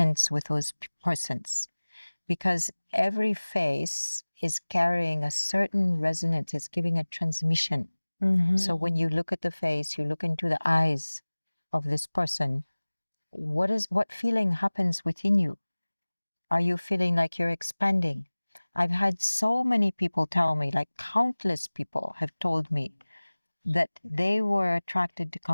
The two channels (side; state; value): both; inverted; correlation -1.00